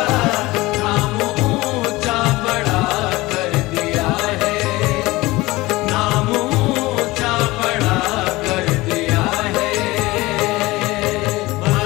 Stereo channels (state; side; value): quieter; right; 20.4 dB